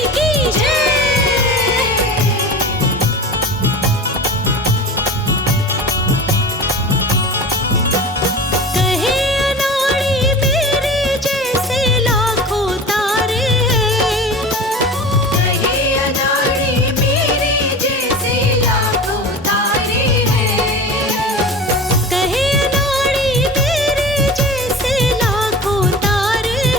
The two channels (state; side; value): normal; both; correlation 0.34